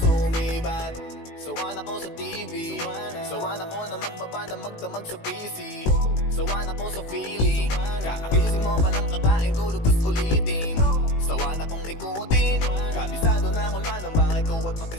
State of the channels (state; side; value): late; right; 18 ms